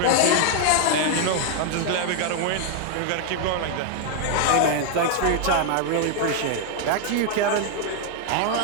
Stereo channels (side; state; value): both; different; correlation 0.00